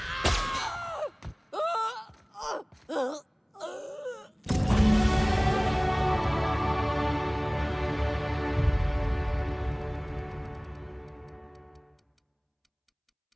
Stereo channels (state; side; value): identical; both; correlation 1.00